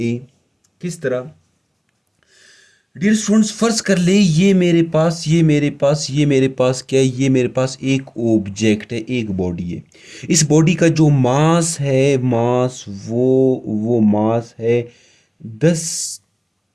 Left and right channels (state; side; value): identical; both; correlation 1.00